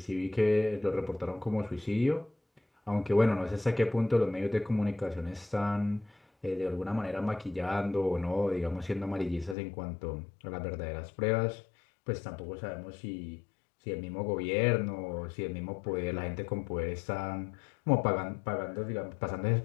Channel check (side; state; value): right; drops out; at 9.6 s